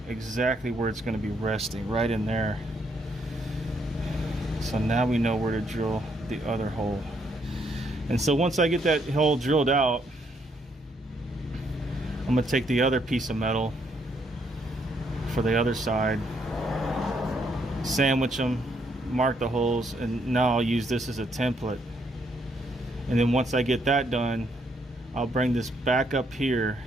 exactly where it's going to be resting, right in there. So now we know where to drill the other hole. And so once I get that hole drilled out, I'm going to take the other piece of metal for the other side, sandwich them, mark the holes, and now I'll use this as a template. And then once I get that done, I'll bring this back up here,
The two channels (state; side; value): normal; both; correlation 0.72